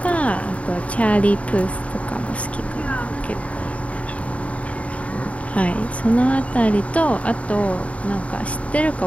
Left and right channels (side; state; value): right; late; 0.066 ms